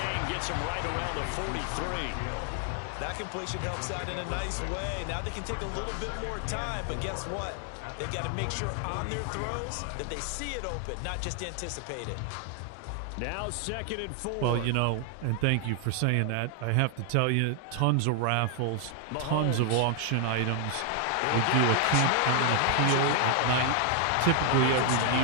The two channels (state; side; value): different; both; correlation 0.00